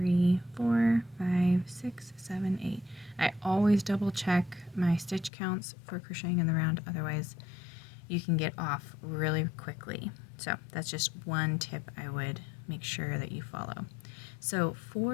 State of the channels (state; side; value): drops out; right; at 5.3 s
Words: 4, 5, 6, 7, 8. I always double check my stitch counts for crocheting in the round, otherwise you can get off really quickly. So that's just one tip I would make sure that you follow. So